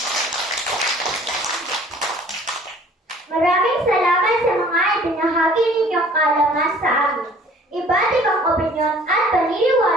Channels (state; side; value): normal; both; correlation 0.52